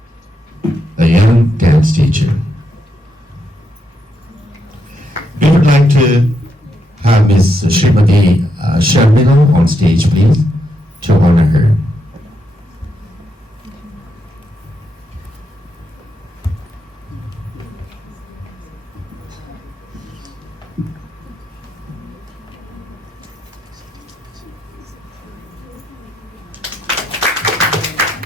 a young dance teacher. We would like to have Ms. Srimati Sharmila on stage, please, to honor her.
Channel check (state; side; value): normal; both; correlation 0.80